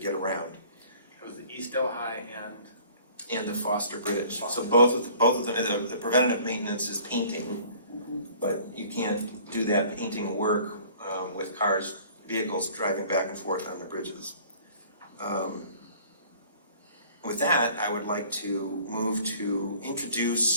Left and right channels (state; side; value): inverted; both; correlation -0.52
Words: around. It was the East Delhi And the Foster Bridge. So both of them, the preventative maintenance is painting, but you can't do that painting work with vehicles driving back and forth on the bridges. With that, I would like to move to